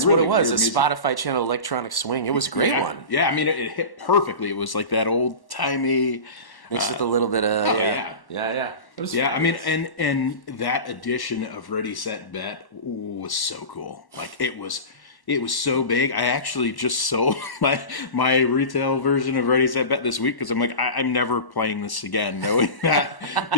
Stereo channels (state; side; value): late; right; 1.1 ms